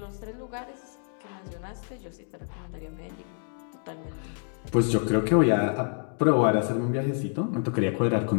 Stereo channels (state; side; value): silent; right; 59 dB below the other